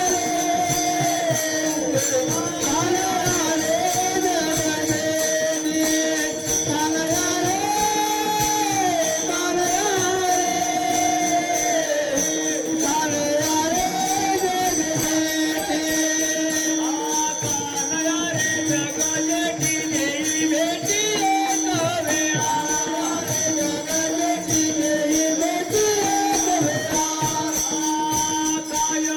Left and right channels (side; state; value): both; identical; correlation 1.00